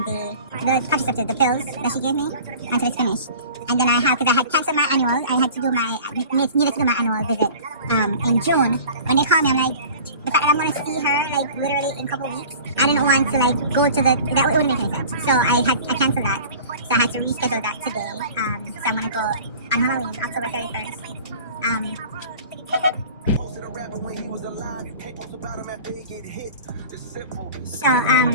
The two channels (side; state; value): both; inverted; correlation -0.42